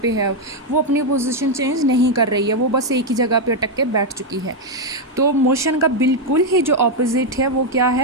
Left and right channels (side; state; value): both; normal; correlation 0.01